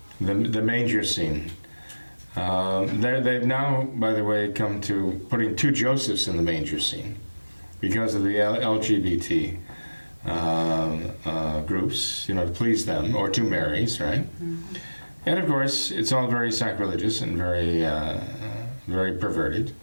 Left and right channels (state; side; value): inverted; both; correlation -1.00